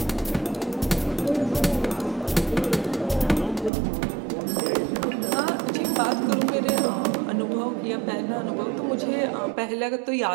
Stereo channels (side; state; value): left; drops out; at 3.7 s